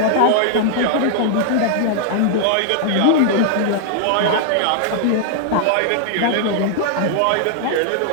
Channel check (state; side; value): different; both; correlation 0.00